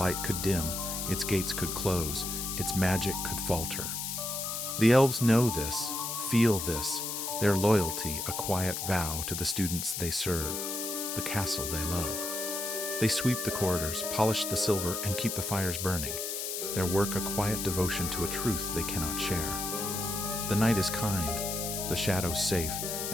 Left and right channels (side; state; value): left; noise; hiss, 3 dB below the sound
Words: could dim, its gates could close, its magic could falter. The elves know this, feel this, their loyalty a quiet vow to the students they serve, the castle they love. They sweep the corridors, polish the silver, and keep the fires burning, their work a quiet devotion to a truth they cannot share. The night is kind, the shadows safe,